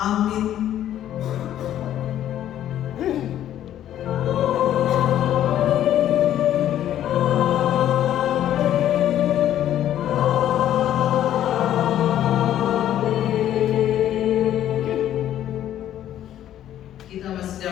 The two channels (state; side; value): quieter; right; 11.6 dB